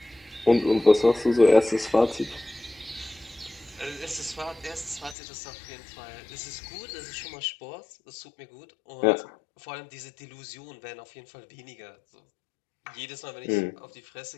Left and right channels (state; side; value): drops out; right; at 5.2 s